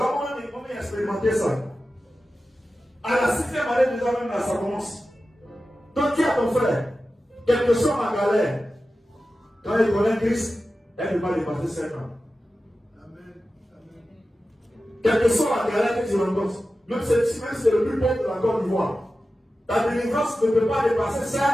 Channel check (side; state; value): both; normal; correlation 0.94